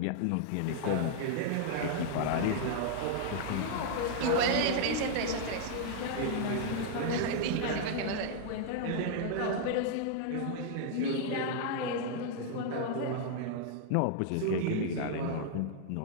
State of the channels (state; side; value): different; both; correlation -0.01